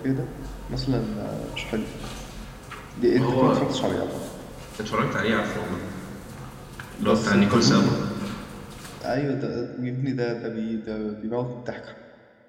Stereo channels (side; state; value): both; identical; correlation 1.00